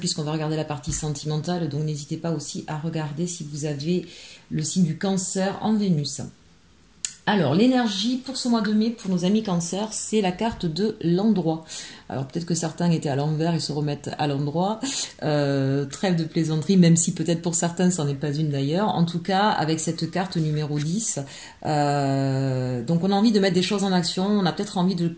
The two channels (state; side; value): identical; both; correlation 1.00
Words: va regarder la partie sentimentale. Donc n'hésitez pas aussi à regarder si vous avez le signe du cancer en Vénus. Alors, l'énergie pour ce mois de mai, pour nos amis cancer, c'est la carte de l'endroit. Alors, peut-être que certains étaient à l'envers, ils se remettent à l'endroit. Trêve de plaisanterie, même si peut-être pour certains, ce n'en est pas une d'ailleurs. En tout cas, avec cette carte numéro 10, donc on a envie de mettre des choses en action, on a peut-être envie de